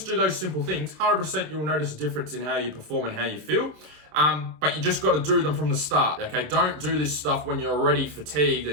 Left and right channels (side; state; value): left; late; 27 ms